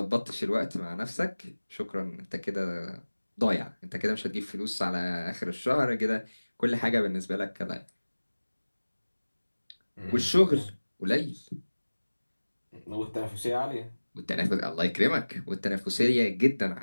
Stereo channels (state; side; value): inverted; both; correlation -1.00